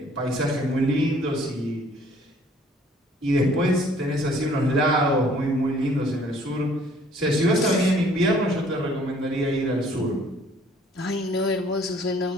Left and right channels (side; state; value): both; normal; correlation 0.58